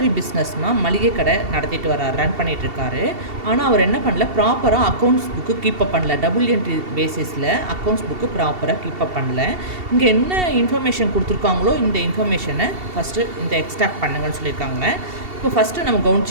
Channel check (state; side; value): late; left; 2.7 ms